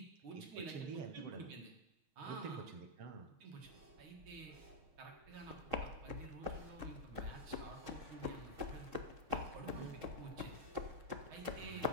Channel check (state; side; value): late; left; 6.4 ms